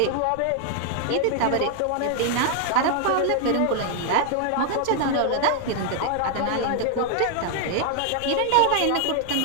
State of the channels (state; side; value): different; both; correlation 0.00